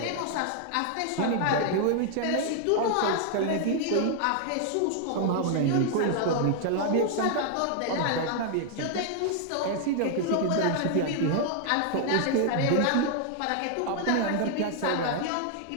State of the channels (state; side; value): different; both; correlation 0.00